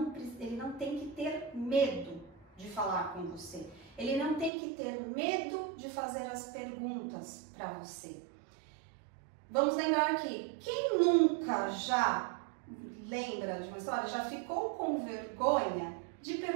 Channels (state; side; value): drops out; left; at 4.5 s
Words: não tem que ter medo de falar com você. Ele não tem que ter medo de fazer as perguntas para você. Vamos lembrar aqui, quem nunca já lembra de uma história, já ficou com vergonha de